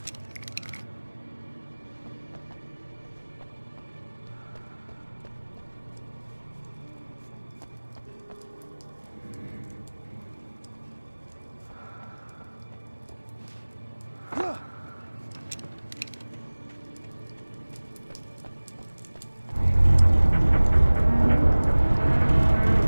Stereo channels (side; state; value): both; inverted; correlation -1.00